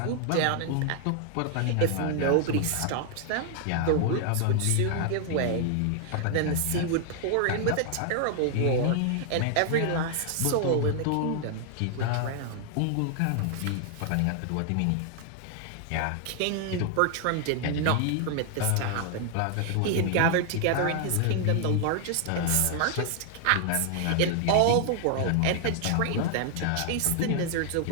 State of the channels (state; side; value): different; both; correlation 0.00